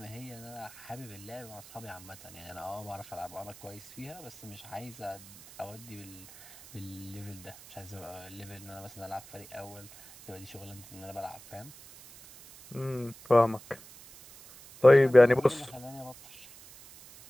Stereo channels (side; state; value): right; noise; hiss, 19 dB below the sound